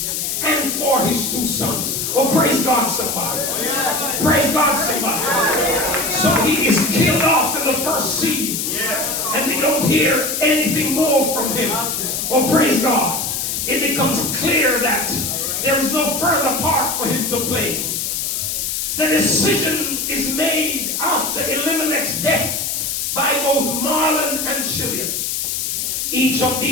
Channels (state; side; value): noise; left; hiss, 1 dB below the sound